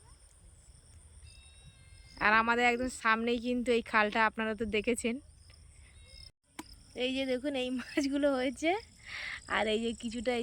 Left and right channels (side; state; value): both; identical; correlation 1.00